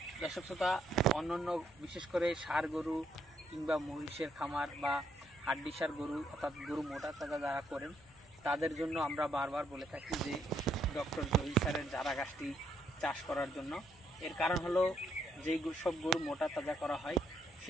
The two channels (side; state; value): both; normal; correlation 0.73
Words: দর্শক শ্রোতা, অন্যান্য বিশেষ করে ষাঁড় গরু কিংবা মহিষের খামার বা হাড্ডিসার গরু অর্থাৎ গরু মোটা তাজা যারা করেন তাদের জন্য আমরা বারবার বলে থাকি যে ডক্টর জহির স্যারের জারা ঘাসটি চাষ করার জন্য। এর কারণ হলো যেই সব গরু মোটা তাজা করা হয়